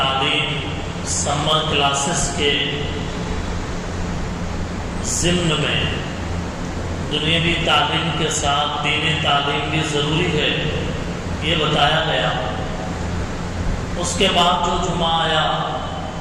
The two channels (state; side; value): identical; both; correlation 1.00